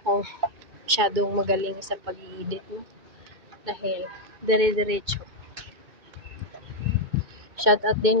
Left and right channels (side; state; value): left; late; 2.2 ms